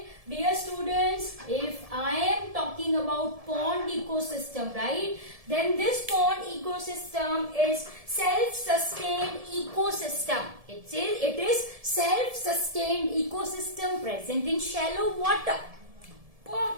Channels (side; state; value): left; late; 1.7 ms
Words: dear students, if I am talking about pond ecosystem, right, then this pond ecosystem is self-sustained ecosystem. It is self-sustained ecosystem present in shallow water.